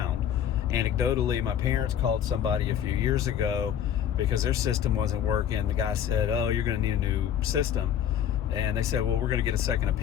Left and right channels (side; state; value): right; quieter; 9.5 dB